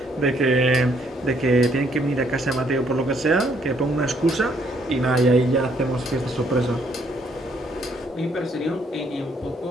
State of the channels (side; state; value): both; normal; correlation 0.68